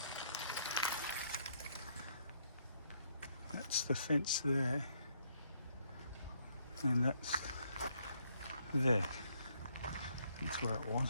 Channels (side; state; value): both; inverted; correlation -0.71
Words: That's the fence there, and that's there. That's where it